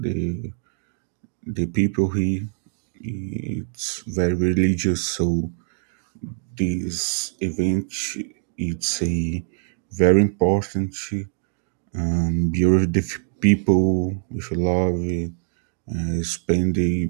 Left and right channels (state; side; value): silent; left; digital silence